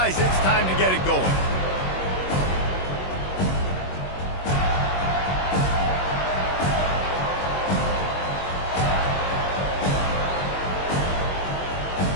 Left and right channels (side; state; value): right; late; 21 ms